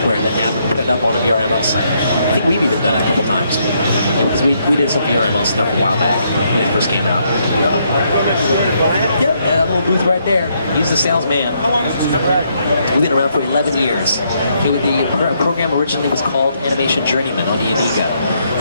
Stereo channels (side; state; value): both; inverted; correlation -0.74